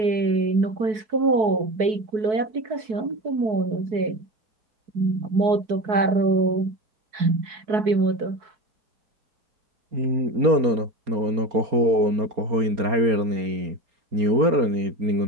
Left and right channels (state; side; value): late; left; 4.6 ms